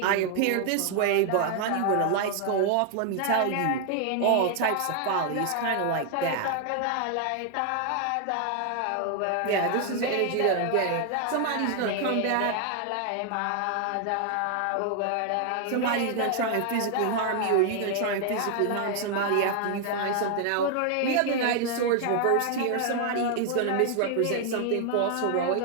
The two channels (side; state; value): both; different; correlation 0.00